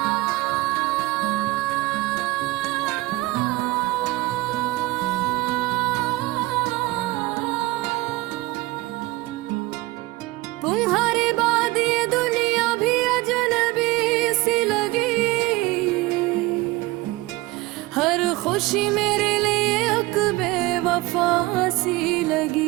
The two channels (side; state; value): left; quieter; 20.3 dB